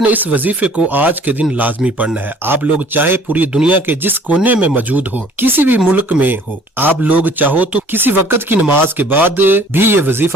نے اس وظیفے کو آج کے دن لازمی پڑھنا ہے۔ آپ لوگ چاہے پوری دنیا کے جس کونے میں موجود ہو، کسی بھی ملک میں ہو، آپ لوگ چاہو تو کسی وقت کی نماز کے بعد بھی یہ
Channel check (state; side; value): normal; both; correlation 0.54